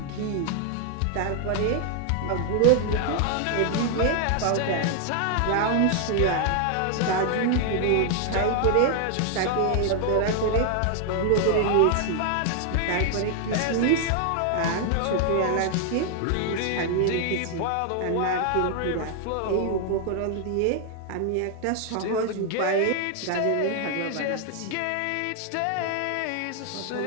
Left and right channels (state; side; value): different; both; correlation 0.00